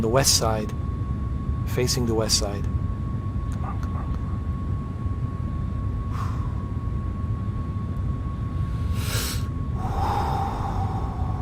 west side, facing the west side.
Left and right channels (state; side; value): identical; both; correlation 1.00